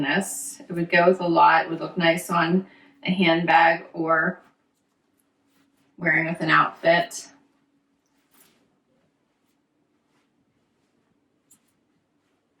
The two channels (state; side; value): identical; both; correlation 1.00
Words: this. It would go with a lot. It would look nice on a handbag or wearing with an outfit.